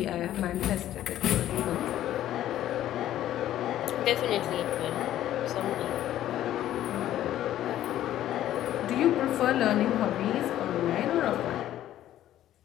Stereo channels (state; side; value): quieter; right; 12.6 dB